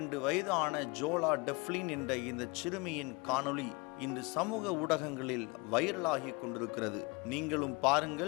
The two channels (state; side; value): quieter; right; 28.0 dB